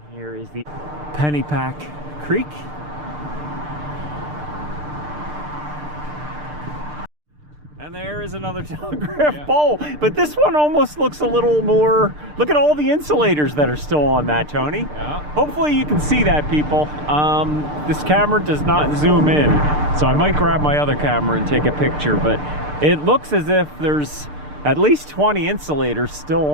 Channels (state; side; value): late; left; 6.7 ms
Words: Here is the Pennypack Creek. And there is is another telegraph pole, but this one almost looks a little more, look at all the insulators that are still on that, Tony. Yeah. Hopefully you can see that, people. This camera does not zoom in, so I might grab my other camera and take a picture, but it looks as if there's at least 20 insulators still